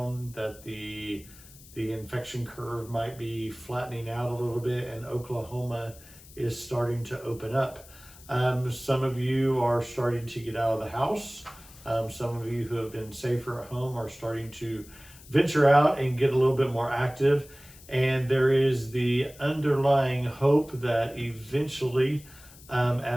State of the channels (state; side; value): noise; left; hiss, 21 dB below the sound